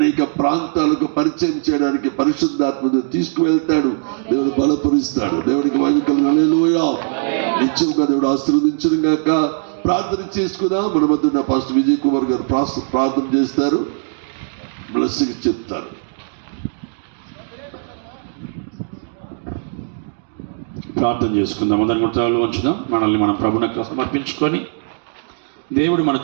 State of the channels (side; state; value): left; silent; digital silence